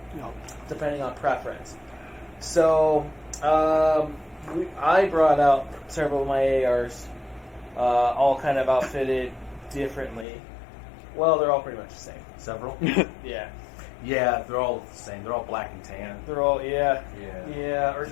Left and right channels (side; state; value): right; drops out; at 10.2 s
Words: Yep. depending on preference. So, I brought out several of my ARs, all kind of outfitted differently. Well, they're all pretty much the same. Several. Yeah, Yeah, they're all the same. They're all black and tan. they're all Yeah, or